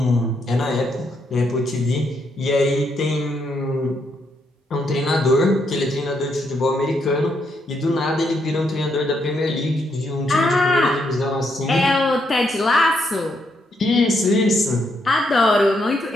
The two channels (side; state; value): both; normal; correlation 0.77